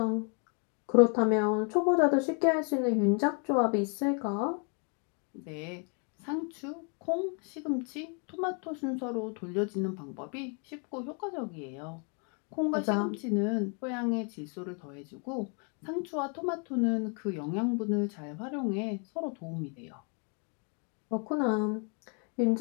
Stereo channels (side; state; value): right; quieter; 38.3 dB